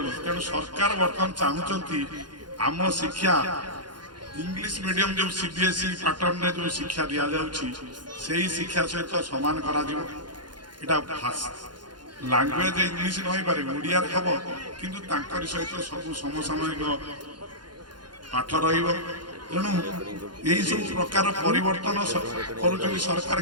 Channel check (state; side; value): late; left; 0.71 ms